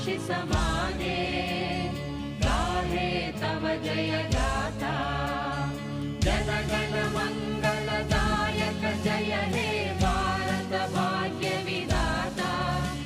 माने गाहे तव जय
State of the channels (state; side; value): identical; both; correlation 1.00